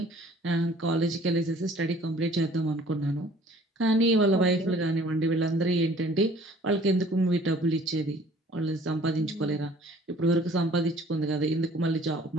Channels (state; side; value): normal; both; correlation 0.53